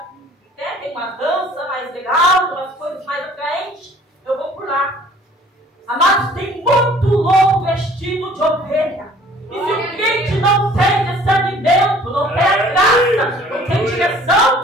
tem uma dança mais legal, umas coisas mais atraentes, eu vou por lá. Amados, tem muito louco vestido de ovelha. E se o crente não tem discernimento, não tem a graça, não tem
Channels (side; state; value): both; normal; correlation 0.53